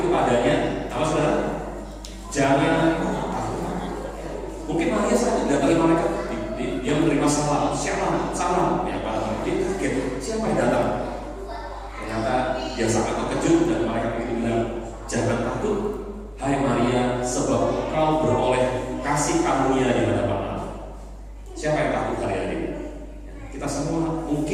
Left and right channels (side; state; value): both; identical; correlation 1.00